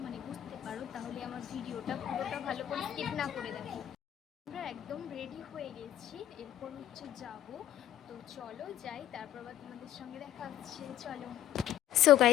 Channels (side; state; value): right; quieter; 12.0 dB